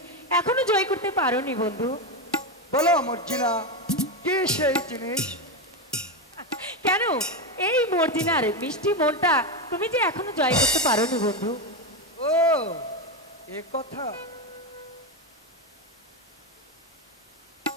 এখনো জয় করতে পারোনি বন্ধু। বলো মর্জিনা, কি সেই জিনিস? কেন এই মর্জিনার মিষ্টি মনটা তুমি যে এখনো জয় করতে পারোনি বন্ধু? ও এ কথা।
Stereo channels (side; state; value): both; normal; correlation 0.12